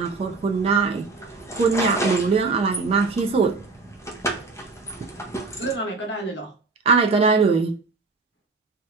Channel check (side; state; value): left; quieter; 4.0 dB